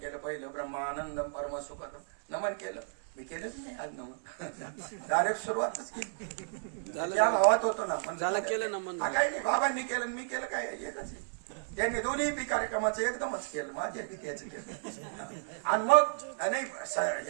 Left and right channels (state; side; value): silent; left; 56 dB below the other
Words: पहिलं ब्रह्मानंदम परमसुखदम नमन केलं. मी केलंच नाही आज नमन, डायरेक्ट सुरुवातच केली. त्या भावात होतो ना, झालं केलं नमन. काही नाही, बाबांनी केलं मी केलं, काय एकच आहे. त्यांनी दोन्ही बी कार्यक्रमाचं एकदमच केलं, माझ्या बी त्याचं केलं. आणि मग नाही